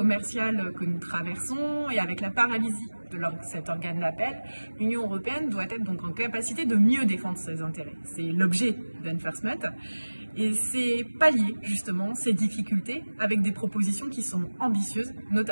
que nous traversons et avec la paralysie de cet organe d'appel, l'Union européenne doit être donc en capacité de mieux défendre ses intérêts. C'est l'objet d'Enforcement et c'est pallier justement ces difficultés avec des propositions qui sont ambitieuses,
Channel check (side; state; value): both; inverted; correlation -1.00